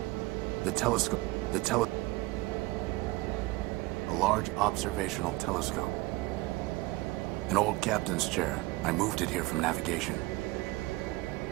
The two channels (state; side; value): quieter; left; 21.1 dB